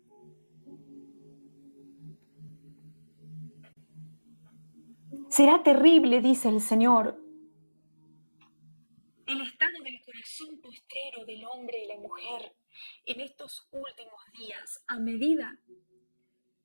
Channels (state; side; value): inverted; both; correlation -1.00